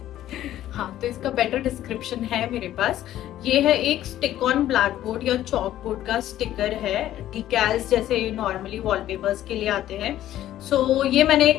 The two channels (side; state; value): right; quieter; 12.9 dB